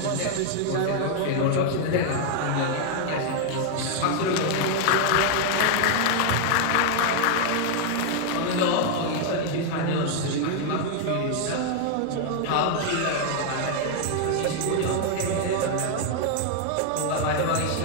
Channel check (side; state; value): both; different; correlation 0.00